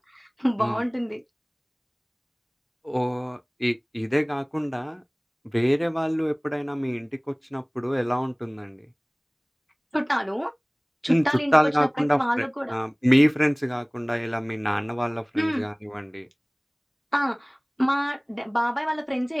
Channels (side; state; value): both; identical; correlation 1.00